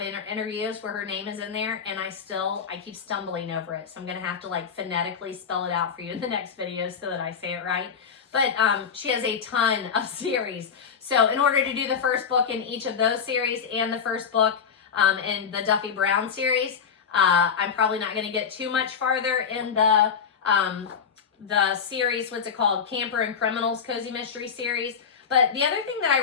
interviews where her name is in there, and I keep stumbling over it. So I'm going to have to like phonetically spell it out for you in the next video so that I say it right. But she has a ton of series. So in order to do the first book in each of those series and the first book in the Duffy Brown series, I'm probably not going to get too much farther in the series, what's it called? Camper and Criminals Cozy Mystery Series. But the other thing that I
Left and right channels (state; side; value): quieter; right; 6.7 dB